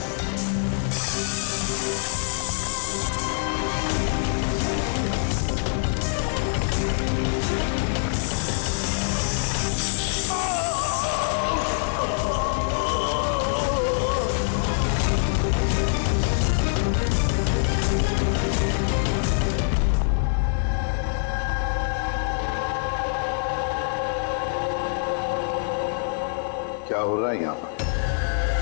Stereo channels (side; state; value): right; silent; digital silence